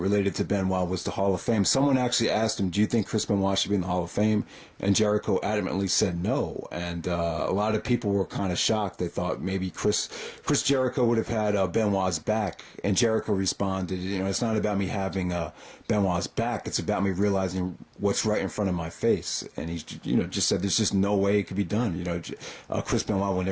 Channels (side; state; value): both; identical; correlation 1.00